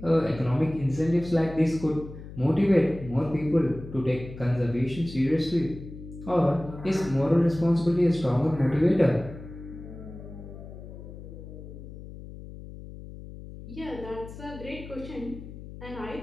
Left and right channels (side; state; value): left; noise; hum, 13 dB below the sound